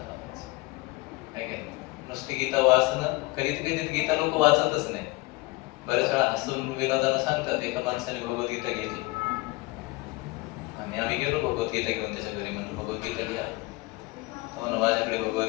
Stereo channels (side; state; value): right; quieter; 23.0 dB